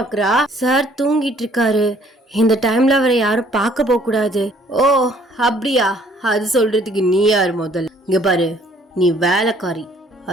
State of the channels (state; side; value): normal; both; correlation 0.60